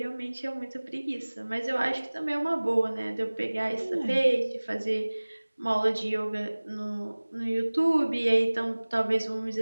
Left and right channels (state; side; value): inverted; both; correlation -1.00